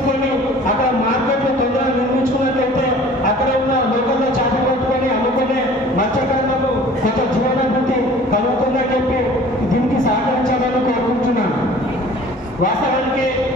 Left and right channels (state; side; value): normal; both; correlation 0.48